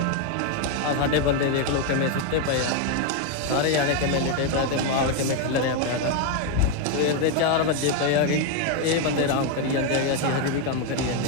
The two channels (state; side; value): different; both; correlation 0.01